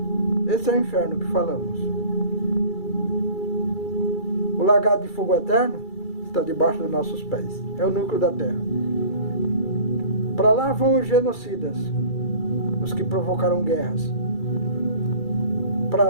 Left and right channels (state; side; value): late; right; 2.3 ms